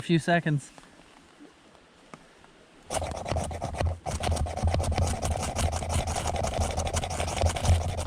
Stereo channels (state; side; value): identical; both; correlation 1.00